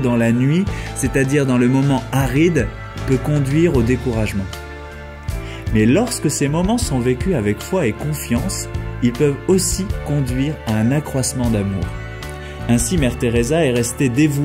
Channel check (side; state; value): both; identical; correlation 1.00